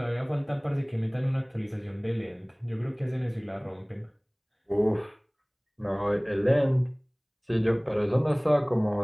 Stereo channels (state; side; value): identical; both; correlation 1.00